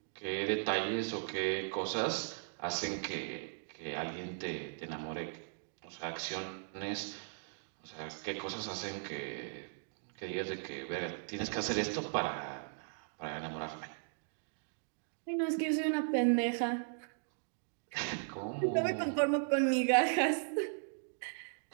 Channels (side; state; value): left; silent; digital silence